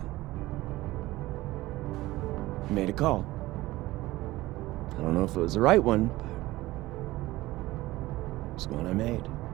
I made a call. I don't know if it was the right one, but it was one I made.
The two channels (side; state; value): left; quieter; 18.1 dB